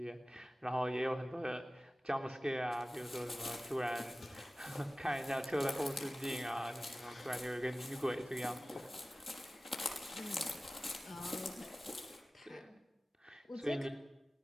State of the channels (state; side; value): normal; both; correlation 0.96